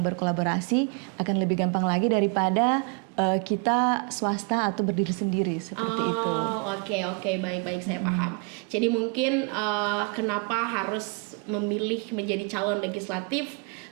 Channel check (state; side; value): quieter; left; 33.2 dB